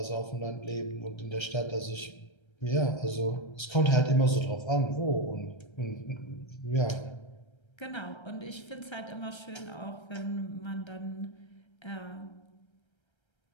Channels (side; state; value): right; late; 1.3 ms